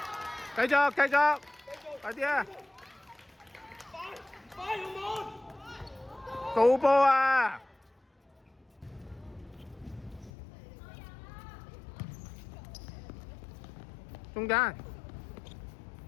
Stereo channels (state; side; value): drops out; right; at 10.3 s